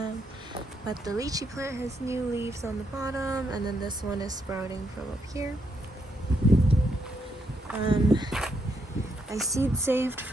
But the lychee plant has new leaves on the bottom, and then this one is sprouting from up here. I seed saved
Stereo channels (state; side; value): normal; both; correlation 0.78